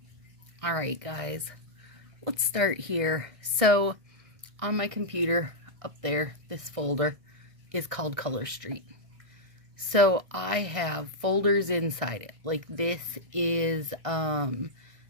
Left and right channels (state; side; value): late; left; 1.6 ms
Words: right, guys, let's start here. So on my computer up there, this folder is called Color Street. So I have folders inside it. Like this is the